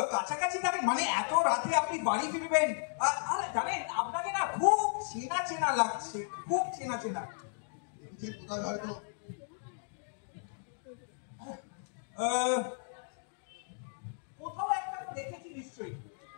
কাছাকাছি থাকেন? মানে এত রাতে আপনি বাড়ি ফিরবেন? আরে জানেন, আপনাকে না খুব চেনা চেনা লাগছে, খুব চেনা চেনা। কোথায় হয়তো কোথাও একটা দেখেছি নিশ্চয়ই।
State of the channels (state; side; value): silent; right; digital silence